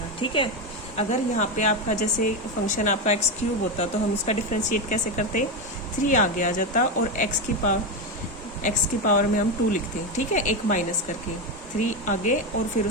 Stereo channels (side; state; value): both; normal; correlation 0.12